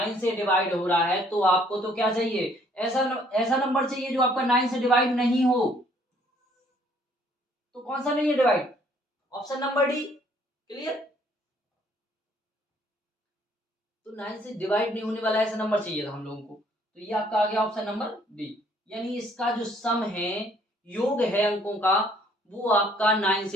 से डिवाइड हो रहा है तो आपको तो क्या चाहिए, ऐसा नंबर चाहिए जो आपका 9 से डिवाइड नहीं हो। तो कौन सा नहीं है divide, option number D. Clear, तो 9 से डिवाइड नहीं होने वाला ऐसा नंबर चाहिए था हम लोगों को, तो ये आपका आ गया ऑप्शन नंबर डी। यानी इसका जो सम है, योग है अंकों का, वो आपका 9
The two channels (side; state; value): both; normal; correlation 0.62